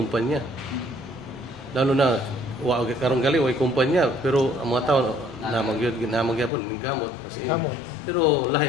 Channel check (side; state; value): right; drops out; at 6.5 s